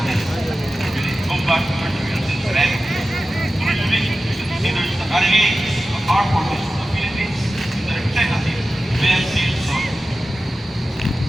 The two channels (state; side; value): normal; both; correlation 0.94